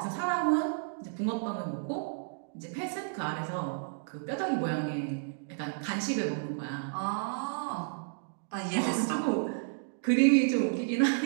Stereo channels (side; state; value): left; silent; digital silence